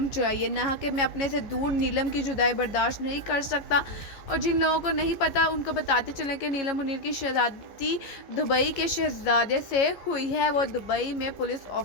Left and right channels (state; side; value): late; right; 15 ms